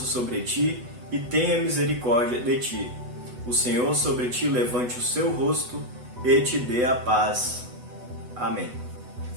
sobre ti e tenha misericórdia de ti. O Senhor sobre ti levante o seu rosto e te dê a paz. Amém.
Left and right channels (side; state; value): left; late; 8.1 ms